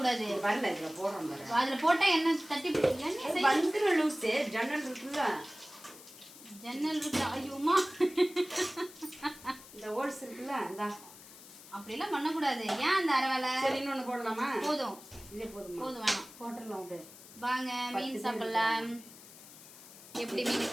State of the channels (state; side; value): noise; left; hiss, 18 dB below the sound